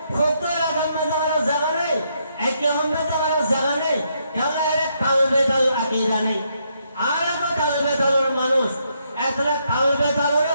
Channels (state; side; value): inverted; both; correlation -0.76